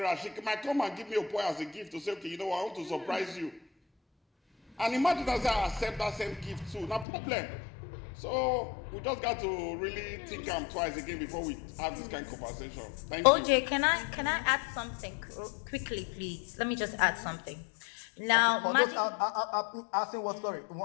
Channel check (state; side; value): drops out; right; at 7.1 s